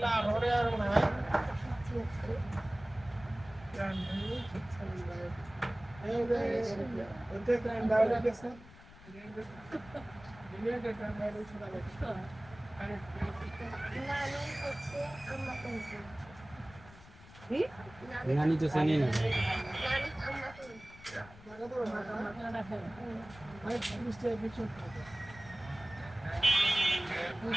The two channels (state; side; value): noise; left; rumble, 20 dB below the sound